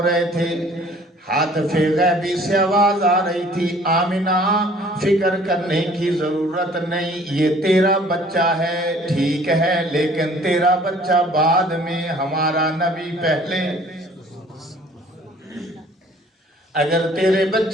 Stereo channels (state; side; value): normal; both; correlation 0.54